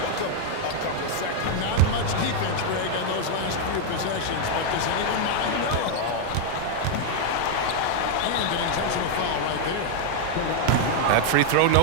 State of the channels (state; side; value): different; both; correlation 0.00